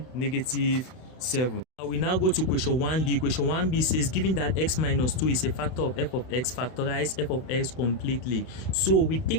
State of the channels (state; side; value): late; right; 32 ms